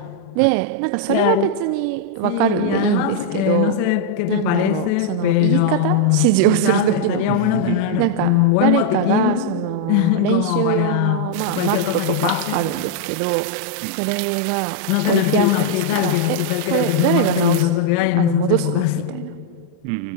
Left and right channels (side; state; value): both; different; correlation -0.01